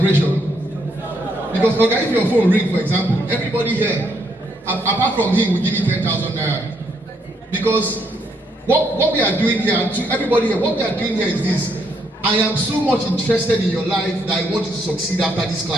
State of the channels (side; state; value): both; normal; correlation 0.73